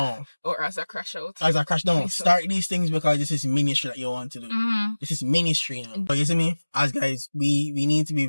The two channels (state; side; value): inverted; both; correlation -1.00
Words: Or as a crash out. No. Start these things because this is ministry that you want to do. This is ministry now. But you see me? As guys, we need to be